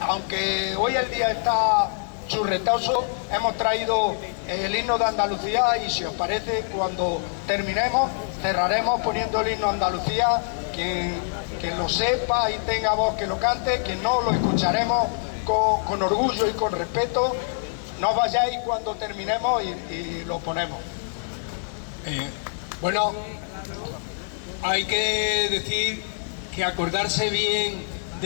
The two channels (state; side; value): silent; right; digital silence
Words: hoy el día está churretoso, hemos traído el himno de Andalucía y si os parece, cuando terminemos, cerraremos poniendo el himno de Andalucía. Quien lo sepa y tenga voz que lo cante, quien no, lo escucharemos con orgullo y con respeto. No vayáis cuando terminemos y lo ponemos. Bueno, hay que decir que acordarse bien